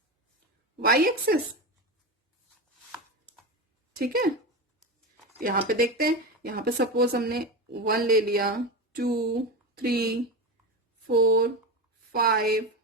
वाई एक्सिस। ठीक है, यहां पे देखते हैं, यहां पे सपोज हमने 1 ले लिया, 2 3 4 5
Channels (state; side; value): normal; both; correlation 0.20